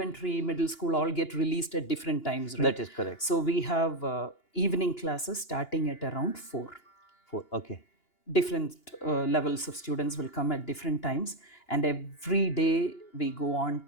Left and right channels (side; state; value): right; late; 2.9 ms